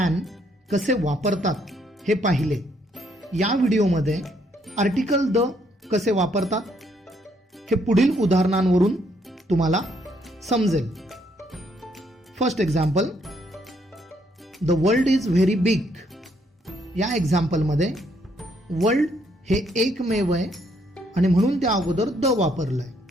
कसे वापरतात हे पाहिले. या व्हिडिओमध्ये आर्टिकल द कसे वापरतात हे पुढील उदाहरणांवरून तुम्हाला समजेल. First example, the world is very big. या एक्झाम्पलमध्ये वर्ल्ड हे एकमेव आहे आणि म्हणून त्या अगोदर द वापरलंय.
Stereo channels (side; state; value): both; normal; correlation 0.71